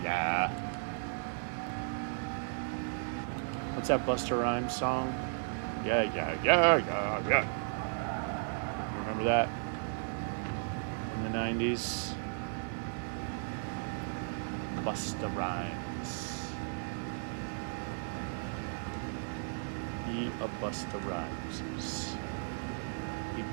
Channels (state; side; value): silent; left; digital silence